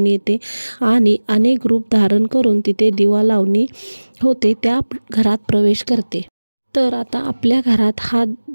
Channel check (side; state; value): both; inverted; correlation -1.00